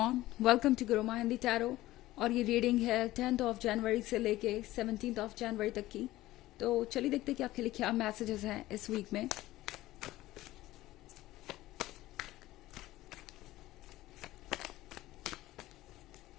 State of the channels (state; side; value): quieter; right; 16.5 dB